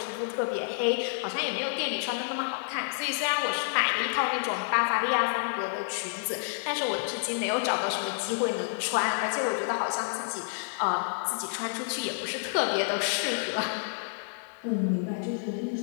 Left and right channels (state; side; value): silent; right; digital silence